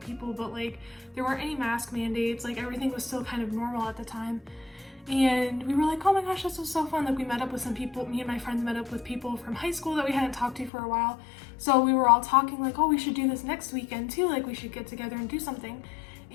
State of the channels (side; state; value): right; drops out; at 10.7 s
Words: but like there weren't any mask mandates, like everything was still kind of normal at the time. And we were like, oh my gosh, this was so fun. Like we met up with some people, me and my friends met up with people from high school that we hadn't talked to for a while. So we were all talking like, oh, we should do this next weekend too. Like we should get together and do something.